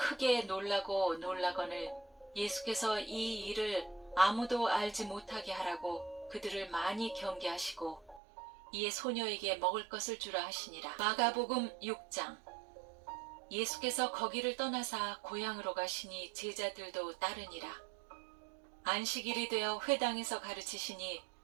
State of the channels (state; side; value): drops out; left; at 8.2 s